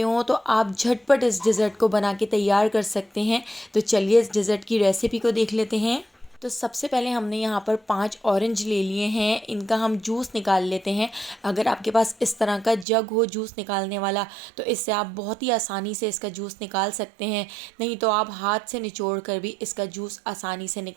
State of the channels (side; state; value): left; drops out; at 12.9 s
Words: हों तो आप झटपट इस डिज़र्ट को बना के तैयार कर सकते हैं। तो चलिए इस डिज़र्ट की रेसिपी को देख लेते हैं। तो सबसे पहले हमने यहाँ पर 5 ऑरेंज ले लिए हैं, इनका हम जूस निकाल लेते हैं। अगर आपके पास इस तरह का जग हो जूस निकालने वाला, तो इससे आप बहुत ही आसानी से इसका जूस निकाल सकते हैं। नहीं तो आप हाथ से निचोड़ कर भी इसका जूस आसानी से